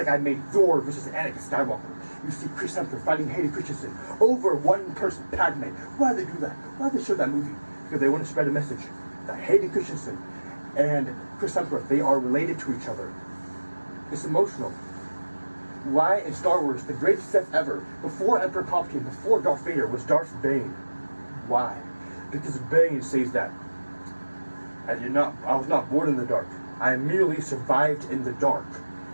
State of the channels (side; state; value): both; inverted; correlation -1.00